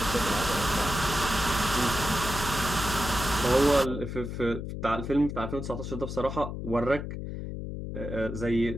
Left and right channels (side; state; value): left; noise; hum, 6 dB below the sound